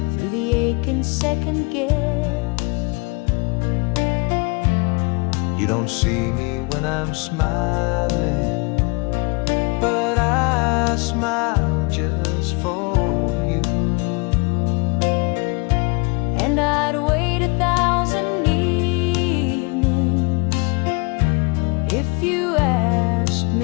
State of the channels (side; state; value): right; quieter; 29.5 dB